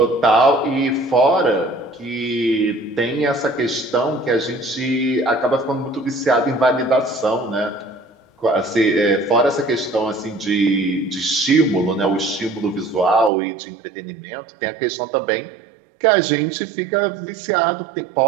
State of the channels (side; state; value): left; drops out; at 13.3 s